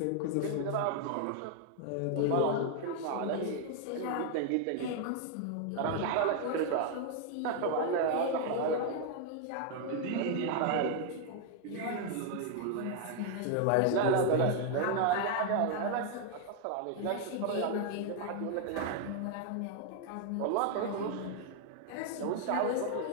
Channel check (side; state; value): both; different; correlation 0.00